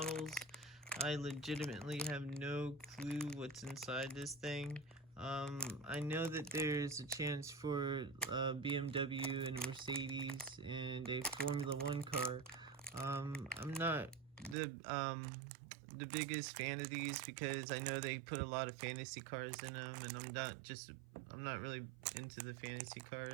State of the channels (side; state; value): left; drops out; at 14.6 s